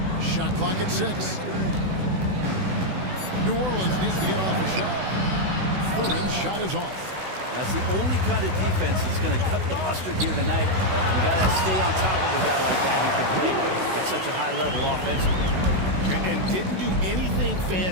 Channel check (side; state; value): left; late; 16 ms